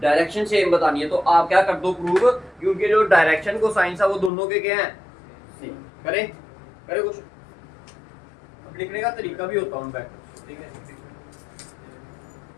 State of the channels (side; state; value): right; drops out; at 4.3 s